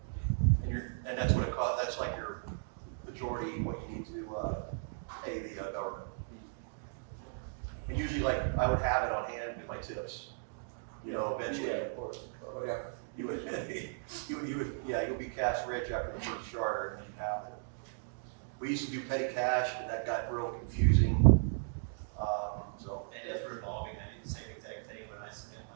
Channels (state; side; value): silent; left; digital silence